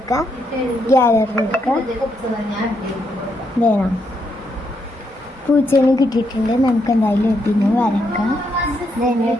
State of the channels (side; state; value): both; normal; correlation 0.78